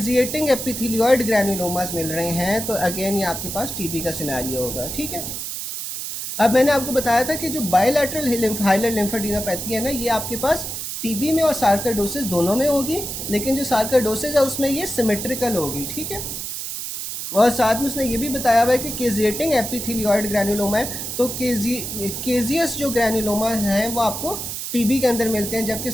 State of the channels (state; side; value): noise; right; hiss, 6 dB below the sound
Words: एपिथेलियोइड ग्रैनुलोमास मिल रहे हैं। तो अगेन ये आपके पास टीबी का सिनेरियो होगा, ठीक है। अब मैंने आपको बताया था कि जो बायलैटरल हाइलर लिम्फेडिनोपैथी है ना, ये आपके पास टीबी में और सार्कोइडोसिस दोनों में होगी, लेकिन जो सार्कोइडोसिस है उसमें ये सिमेट्रिकल होगी, ठीक है। और साथ में उसने ये भी बताया हुआ है कि केजिएटिंग एपिथेलियोइड ग्रैनुलोमा है, तो केजियस जो ग्रैनुलोमा हैं वो आपको टीबी के अंदर मिलते हैं, जबकि